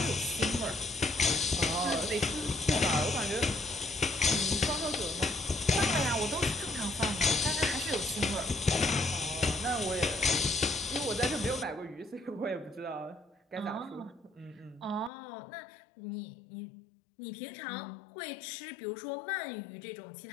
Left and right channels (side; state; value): right; drops out; at 15.1 s